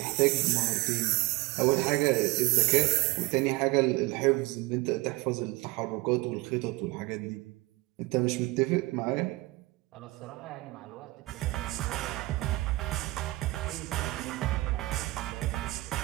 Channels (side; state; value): left; quieter; 20.9 dB